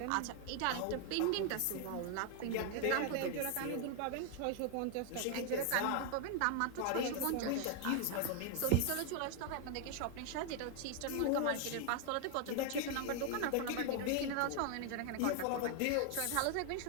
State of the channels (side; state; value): both; different; correlation 0.00